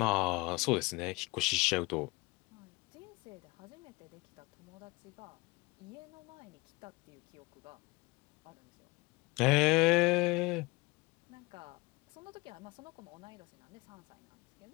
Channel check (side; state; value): right; quieter; 24.4 dB